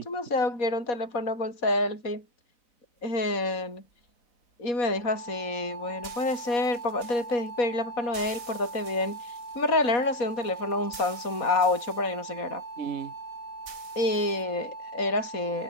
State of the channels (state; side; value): late; right; 4.2 ms